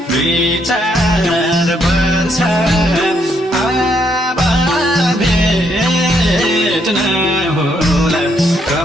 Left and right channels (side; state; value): both; normal; correlation 0.73